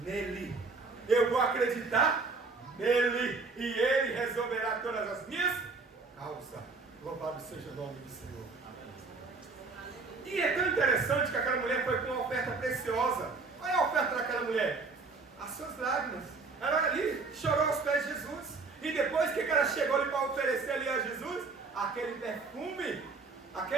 nele. Eu vou acreditar nele. E Ele resolverá todas as minhas causas. Louvado seja o nome do Senhor. E é tão interessante que aquela mulher foi com uma oferta preciosa. Qual é a oferta daquela mulher? As suas lágrimas. Ela ali chorou aos pés de Jesus. E depois que ela chegou ali para oferecer ali a Jesus? Aquele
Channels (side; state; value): left; quieter; 4.1 dB